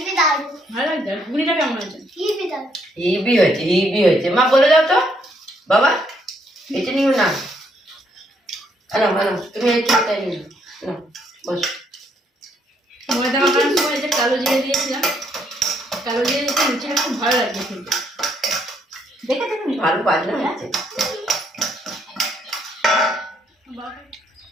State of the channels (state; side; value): normal; both; correlation 0.71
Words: দারুন, ভালো লাগছে? আর ঘুগনিটা কেমন আছে? হিবি দারুন। হিবি হয়েছে, হিবি হয়েছে। মা বলে দাও তো বাবা, এটা নিও না। আনো আনো, তুমি এই খেতে নিও না, বস। ময়দা মাখানোর সময় যে কালো জিরে দিয়েছিলাম, কালো জিরে দিতে লুচিটা খুব ভালো লাগছে কিন্তু। দেখেছো তুমি? ভালো বাজনা হয়েছে।